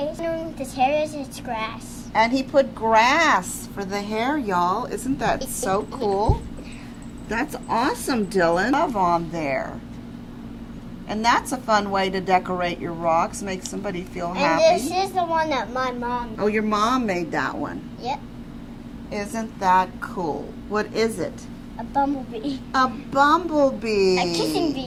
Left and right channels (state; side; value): identical; both; correlation 1.00